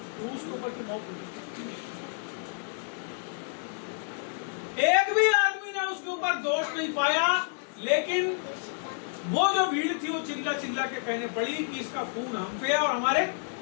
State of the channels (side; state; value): right; silent; 58 dB below the other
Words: के ऊपर की मौत हुई। एक भी आदमी ने उसके ऊपर दोष नहीं पाया, लेकिन वो जो भीड़ थी वो चिल्ला चिल्ला के कहने पड़ी कि इसका खून हम पे और हमारे